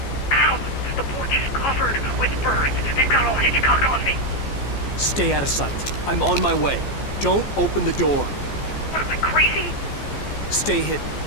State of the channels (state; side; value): late; right; 14 ms